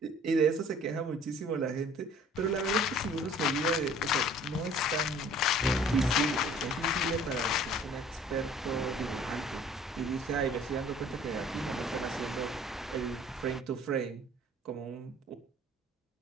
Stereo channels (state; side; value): normal; both; correlation 0.52